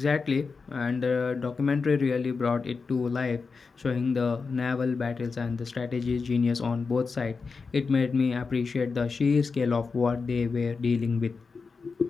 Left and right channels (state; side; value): quieter; right; 4.7 dB